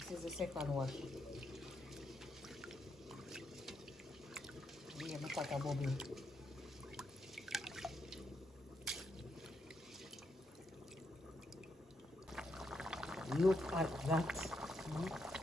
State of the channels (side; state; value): both; normal; correlation 0.80